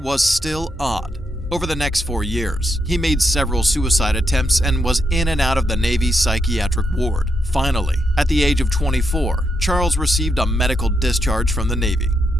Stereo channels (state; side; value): normal; both; correlation 0.81